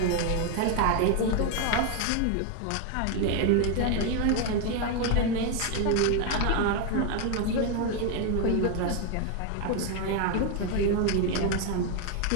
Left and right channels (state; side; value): different; both; correlation 0.01